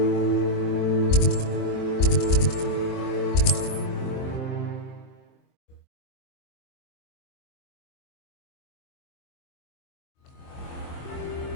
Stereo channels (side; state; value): right; late; 23 ms